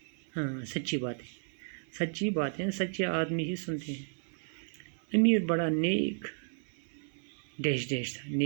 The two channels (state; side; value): silent; left; 56 dB below the other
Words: ہاں سچی باتیں. سچی باتیں سچے آدمی ہی سنتے ہیں. امیر بڑا نیک ڈیش ڈیش تھا.